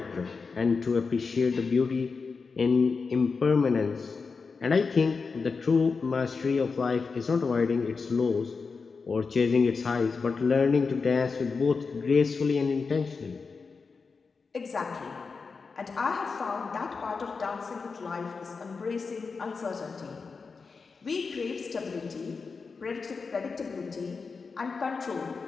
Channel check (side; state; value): right; quieter; 4.8 dB